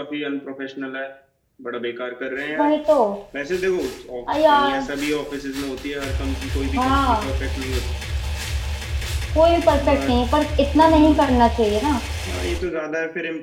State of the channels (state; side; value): identical; both; correlation 1.00